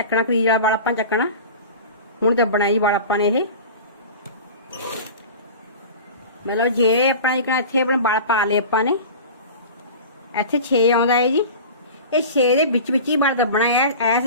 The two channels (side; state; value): both; inverted; correlation -0.36